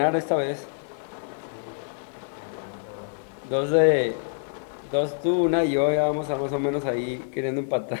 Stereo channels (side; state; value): right; silent; digital silence